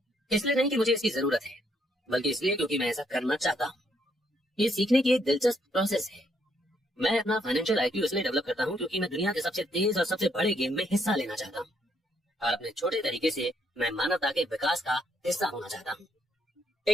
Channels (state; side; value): normal; both; correlation 0.72